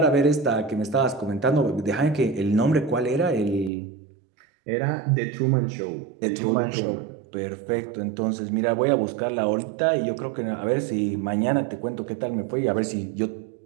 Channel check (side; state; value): left; drops out; at 3.7 s